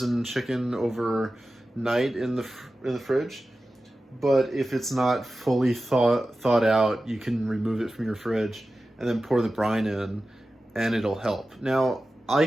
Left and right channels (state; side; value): normal; both; correlation 0.94